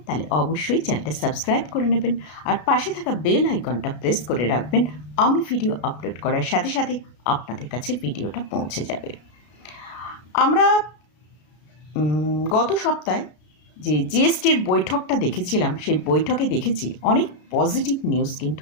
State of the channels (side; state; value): right; late; 33 ms